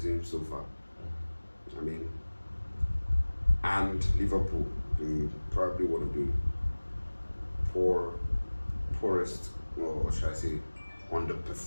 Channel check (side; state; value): both; inverted; correlation -1.00